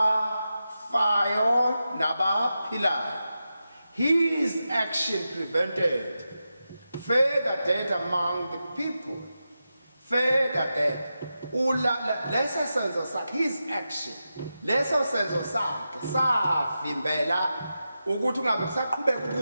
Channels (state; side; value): inverted; both; correlation -0.90